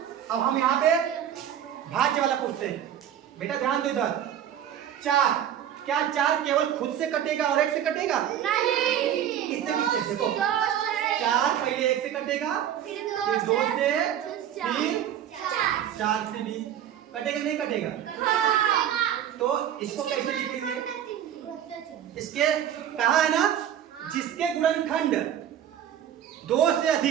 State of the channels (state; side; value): quieter; left; 10.2 dB